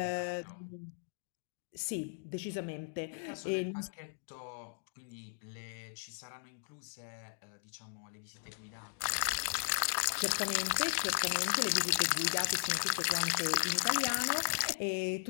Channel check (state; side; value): silent; right; digital silence